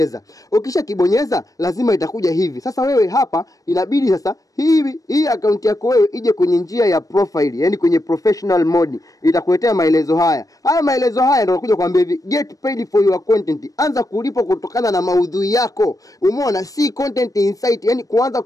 Ukisha kibonyeza lazima itakuja hivi. Sasa wewe hapa inabidi sasa hii account yako wewe ije kwenye njia ya profile, yani kwenye professional mode. Itakuletea maelezo haya. Haya maelezo haya ndio nakuja kuambia hivi, get paid for your content. Anza kulipa kutokana na maudhui yako. Umeona, si content insight, yani kuanza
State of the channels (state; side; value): late; right; 0.17 ms